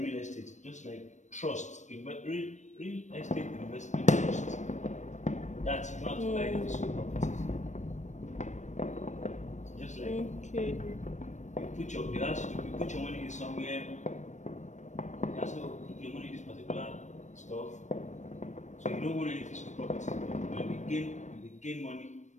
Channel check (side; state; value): right; late; 0.35 ms